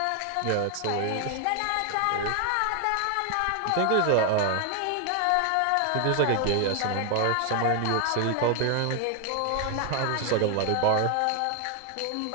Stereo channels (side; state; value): both; different; correlation 0.00